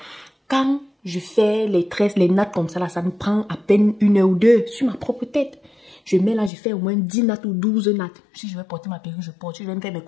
Quand je fais les tresses, les nattes comme ça, là, ça me prend à peine 1 heure ou 2 sur ma propre tête. Je mets là, je fais au moins 10 nattes ou 12 nattes. Si je vais porter ma perruque, je porte. Si je vais me faire mes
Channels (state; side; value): drops out; right; at 6.5 s